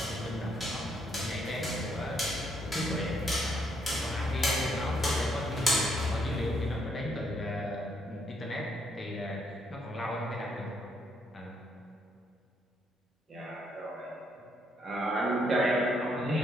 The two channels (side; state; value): both; normal; correlation 0.73